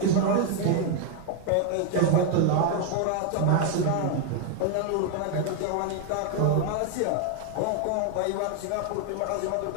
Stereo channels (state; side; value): different; both; correlation 0.00